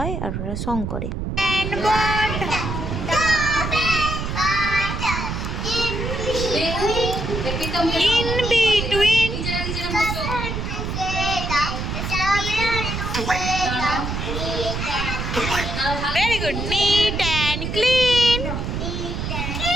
আর ওরা সং করে। In between. Very good. Neat and clean.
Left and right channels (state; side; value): noise; right; rumble, 3 dB below the sound